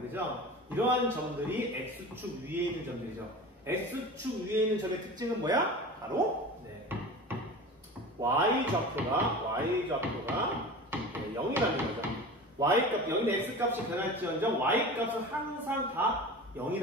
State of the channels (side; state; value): both; normal; correlation 0.34